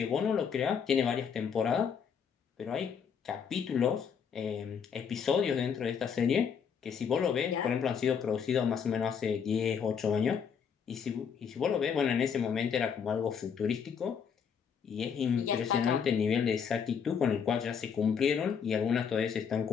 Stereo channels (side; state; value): right; quieter; 6.9 dB